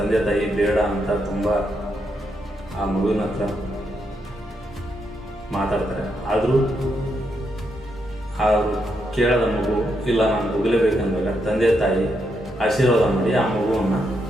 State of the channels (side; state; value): both; normal; correlation 0.80